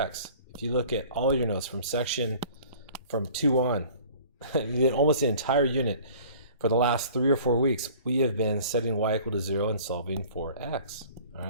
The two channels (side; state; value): both; inverted; correlation -0.48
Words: If you look at all your notes from 2 on, almost the entire unit, for the last 3 or 4 weeks, we have been setting y equal to 0 and solving for x, all